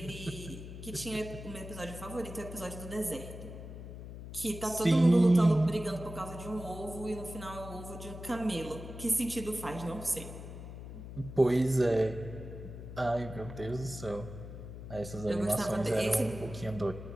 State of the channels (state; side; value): noise; left; hum, 11 dB below the sound